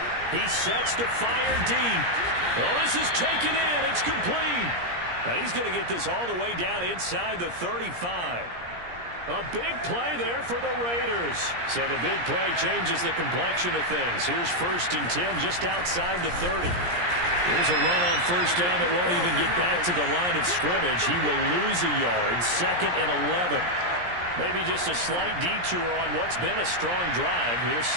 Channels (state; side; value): late; left; 17 ms